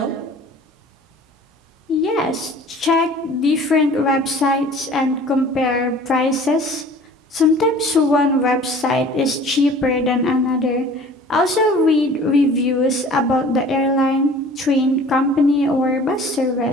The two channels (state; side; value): normal; both; correlation 0.47